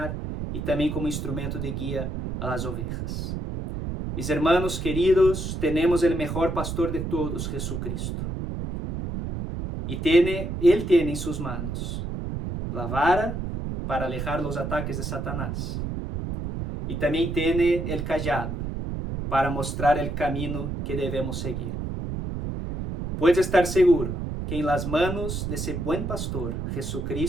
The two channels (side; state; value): right; noise; rumble, 4 dB below the sound